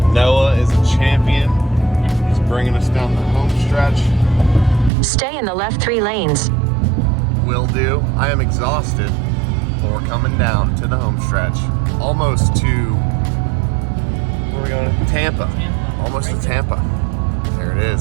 Noah is a champion. He's bringing us down the home stretch. Stay in the left 3 lanes. Will do. I am exhausted, but we're coming down to the home stretch. Almost to, where are we going? Tampa. Almost to Tampa. There it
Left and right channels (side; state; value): left; drops out; at 4.9 s